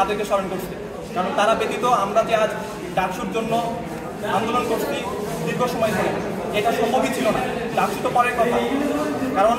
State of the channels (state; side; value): identical; both; correlation 1.00